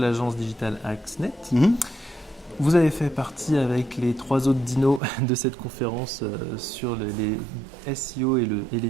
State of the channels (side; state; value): left; drops out; at 5.0 s